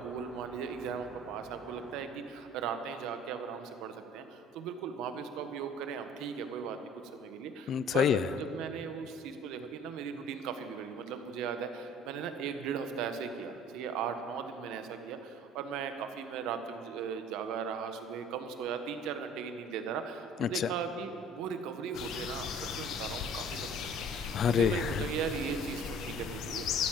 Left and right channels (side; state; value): both; normal; correlation 0.49